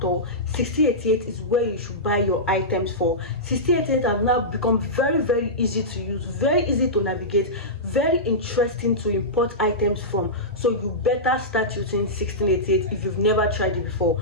all, 1688 is where you should buy your items for. 1688 have now become very easy to use, very easy to navigate, very interesting to import items from. So you better start using 1688 if you've never tried it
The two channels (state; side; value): normal; both; correlation -0.15